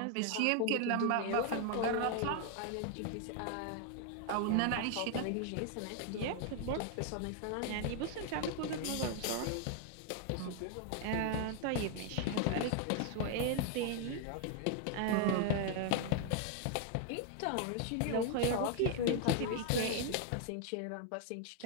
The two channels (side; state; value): both; different; correlation 0.00